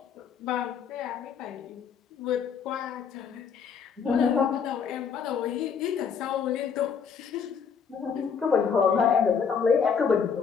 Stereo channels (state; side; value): quieter; right; 6.5 dB